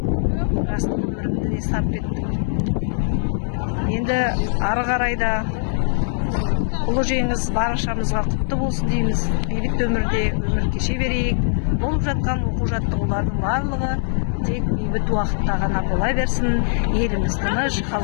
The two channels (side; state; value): right; silent; 65 dB below the other